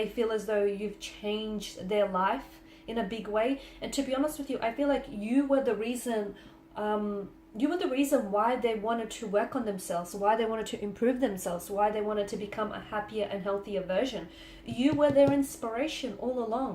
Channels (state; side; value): identical; both; correlation 1.00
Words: feel as though you've changed their life in a big way. And to be honest with you, I feel like you were the reason why they wanted to work on themselves, why they wanted to improve themselves, why they wanted to become a happier and healthier version. You were their inspiration all